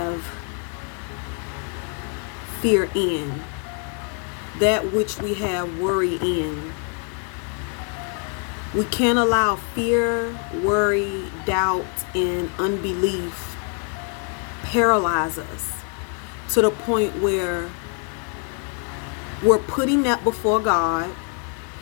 fear in, that which we have worry in. We can't allow fear, worry, doubt, and unbelief paralyze us to the point where we're putting that before God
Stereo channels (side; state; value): right; quieter; 40.0 dB